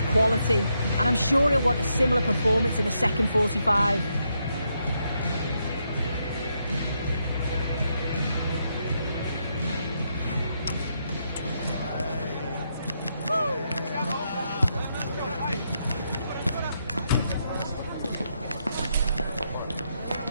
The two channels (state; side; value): inverted; both; correlation -0.80